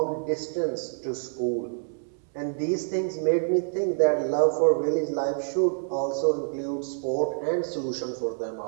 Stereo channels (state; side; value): silent; left; 60 dB below the other